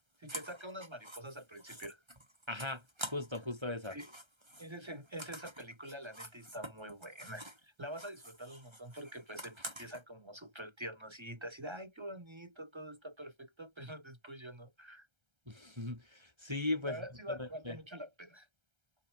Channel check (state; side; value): late; left; 1.3 ms